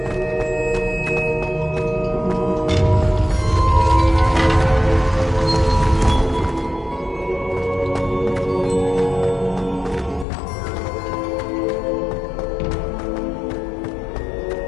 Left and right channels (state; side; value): drops out; right; at 10.2 s